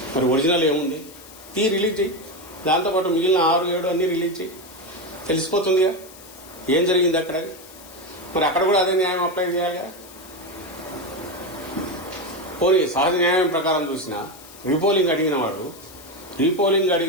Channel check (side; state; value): left; noise; hiss, 20 dB below the sound